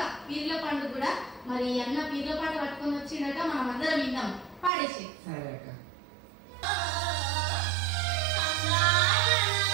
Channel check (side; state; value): left; drops out; at 4.7 s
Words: పీర్ల పండుగ కూడా. మరి అన్న పీర్ల పాట పట్టుకొని వచ్చిందట, మనం అందరం విందాం. పాడేసి. సరే అక్క.